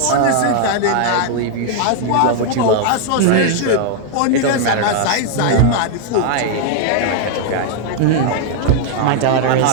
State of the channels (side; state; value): both; different; correlation 0.00